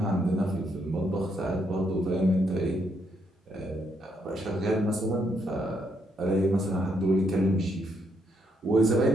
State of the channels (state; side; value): normal; both; correlation 0.75